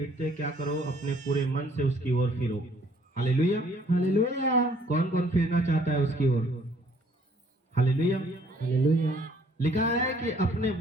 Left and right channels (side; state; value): both; normal; correlation 0.61